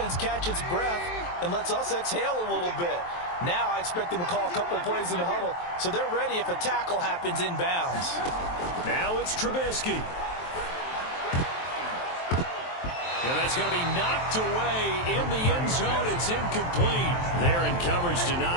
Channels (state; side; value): late; right; 23 ms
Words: catch its breath and lets us exhale a little bit. Now I expect them to call a couple plays in the huddle, so they're ready if a tackle happens inbounds. Now it's Trubisky. And that's going to be knocked away in the end zone. It's incomplete. They're in coverage to